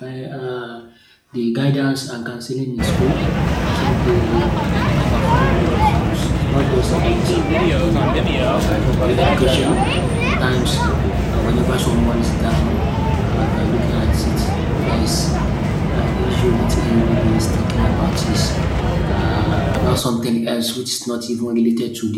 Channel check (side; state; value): both; identical; correlation 1.00